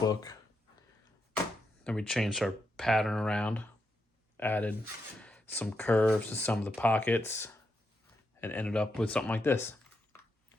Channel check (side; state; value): both; normal; correlation 0.83